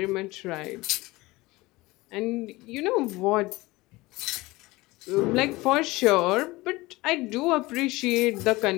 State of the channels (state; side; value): quieter; right; 20.9 dB